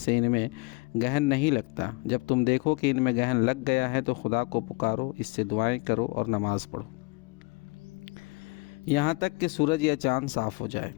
ان میں گرہن نہیں لگتا۔ جب تم دیکھو کہ ان میں گرہن لگ گیا ہے تو خدا کو پکارو، اس سے دعائیں کرو اور نماز پڑھو یہاں تک کہ سورج یا چاند صاف ہو جائے۔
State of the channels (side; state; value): right; quieter; 28.0 dB